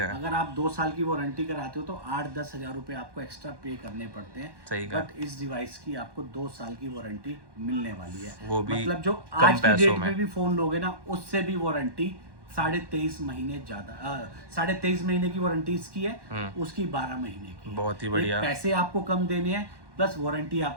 अगर आप 2 साल की वारंटी कराते हो तो 8-10 हज़ार रुपए आपको एक्स्ट्रा पे करने पड़ते हैं। सही। बट इस डिवाइस की आपको 2 साल की वारंटी मिलने वाली है, वो भी मतलब जो आज की डेट में भी फोन लोगे ना उससे भी वारंटी 23.5 महीने ज्यादा, 23.5 महीने की वारंटी इसकी है, उसकी 12 महीने की। बहुत ही बढ़िया। पैसे आपको कम देने हैं प्लस वारंटी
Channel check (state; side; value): late; left; 1.1 ms